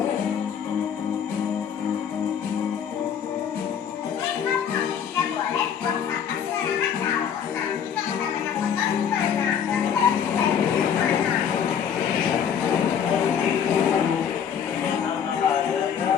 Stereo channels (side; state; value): right; quieter; 8.0 dB